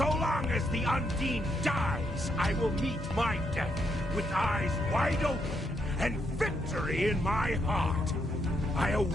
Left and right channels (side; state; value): both; normal; correlation 0.78